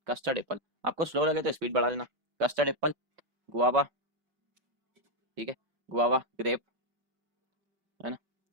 custard Apple. आपको स्लो लगे तो स्पीड बढ़ा लेना। कस्टर्ड एप्पल, गुआवा, ठीक है, गुआवा, ग्रेप, है ना।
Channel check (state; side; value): late; left; 5.3 ms